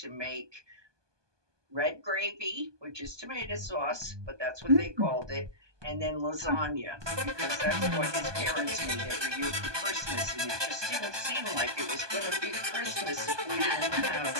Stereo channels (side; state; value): left; late; 1.2 ms